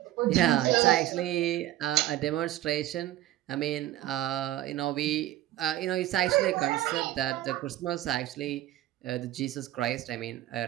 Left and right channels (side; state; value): left; quieter; 14.5 dB